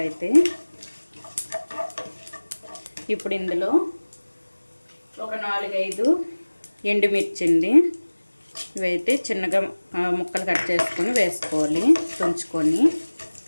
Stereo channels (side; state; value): both; inverted; correlation -1.00